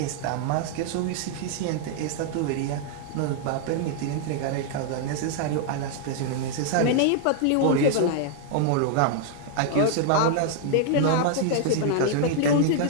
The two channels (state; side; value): different; both; correlation 0.00